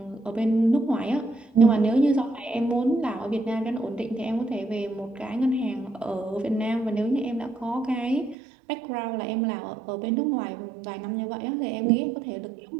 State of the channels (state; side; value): drops out; left; at 8.3 s